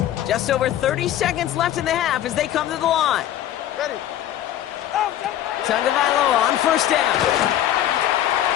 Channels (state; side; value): quieter; right; 12.0 dB